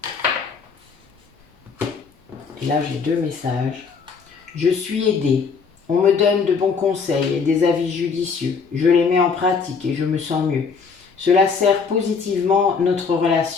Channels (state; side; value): quieter; right; 5.4 dB